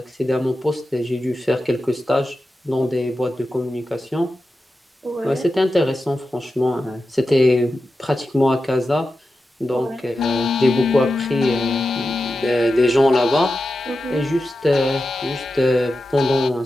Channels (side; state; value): both; normal; correlation 0.91